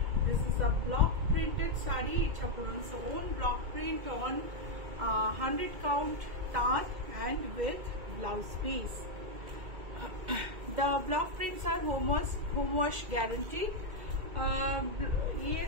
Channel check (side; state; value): left; late; 2.0 ms